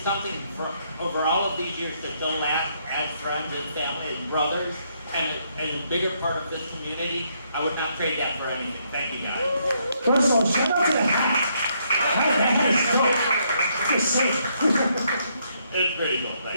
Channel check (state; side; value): inverted; both; correlation -0.73